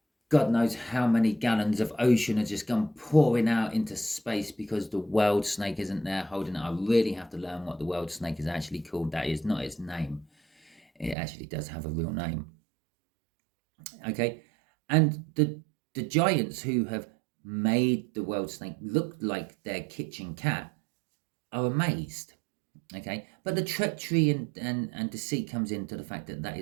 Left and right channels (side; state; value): left; drops out; at 11.2 s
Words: God knows how many gallons of ocean have just gone pouring out into space because the world snake isn't there holding it. I really have to learn what the world snake is actually called. That is not its name. It actually does have a real name. Okay, and the giants who have made the world snake look like their kitchen cat are amazed. Okay, but the treachery and deceit comes into the fact that that